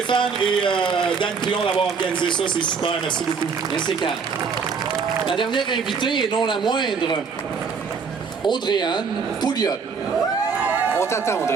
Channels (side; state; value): left; quieter; 5.6 dB